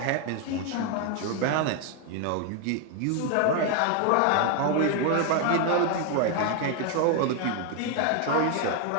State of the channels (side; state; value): both; different; correlation 0.01